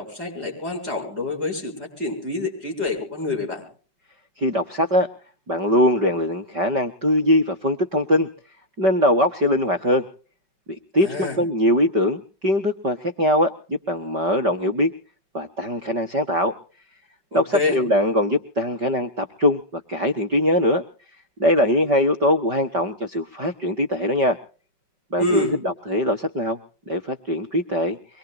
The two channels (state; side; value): late; left; 4.8 ms